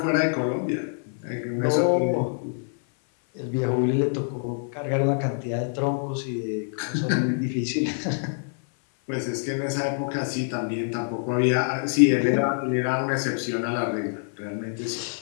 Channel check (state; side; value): silent; right; 57 dB below the other